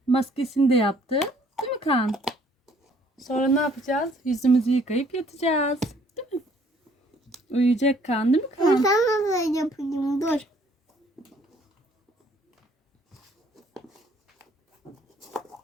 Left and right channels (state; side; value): normal; both; correlation 0.61